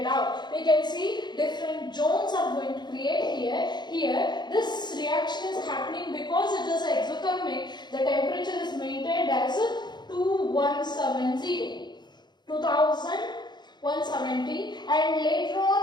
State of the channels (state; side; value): late; right; 0.21 ms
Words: out. We can see different zones are going to create here. Here, this reaction is happening because it is exothermic. The temperature is maintained as 2170, and later